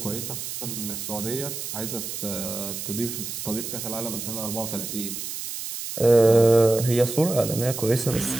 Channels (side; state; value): right; noise; hiss, 6 dB below the sound